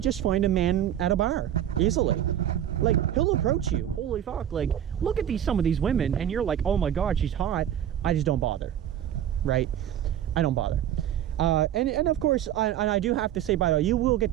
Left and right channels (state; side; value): quieter; left; 10.8 dB